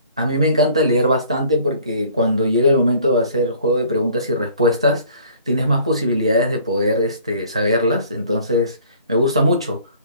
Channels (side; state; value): both; inverted; correlation -0.53